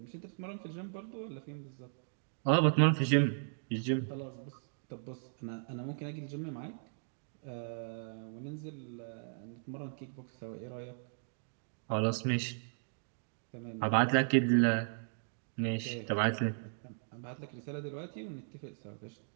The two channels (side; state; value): left; silent; digital silence